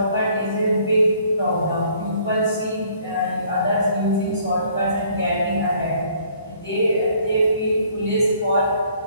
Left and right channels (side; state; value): both; inverted; correlation -0.60